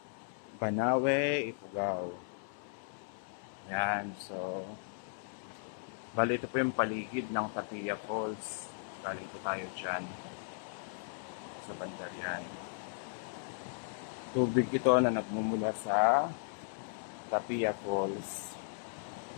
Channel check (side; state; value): right; silent; 54 dB below the other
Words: Banawe, Ifugao. Yan, so bali ito po yung paligid ng Tapia Falls. Bali ito tayo dyan sa bandar yan. Tubig ito na nagmumula sa Tapia Falls.